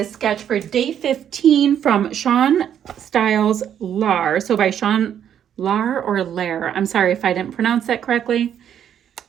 sketch for day 15 from Sean Styles Lar. So by Sean Lar or Lair. I'm sorry if I didn't pronounce that correctly.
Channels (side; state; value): left; quieter; 9.4 dB